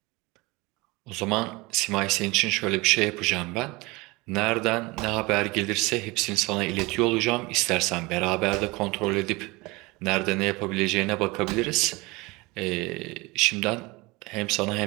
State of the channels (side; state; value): left; quieter; 23.8 dB